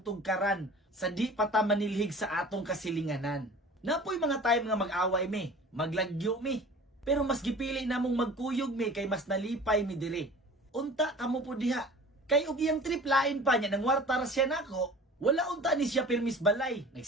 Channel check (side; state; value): both; normal; correlation 0.42